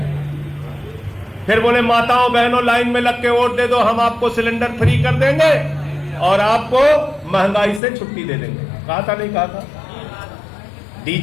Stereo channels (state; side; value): drops out; right; at 7.8 s